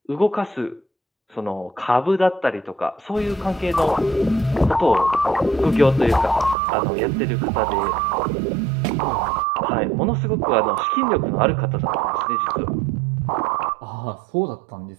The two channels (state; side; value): drops out; left; at 6.6 s